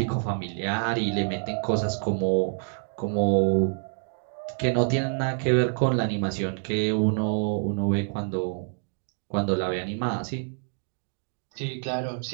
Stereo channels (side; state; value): left; silent; 60 dB below the other